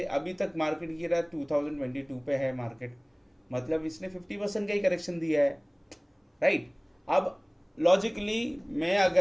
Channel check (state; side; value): identical; both; correlation 1.00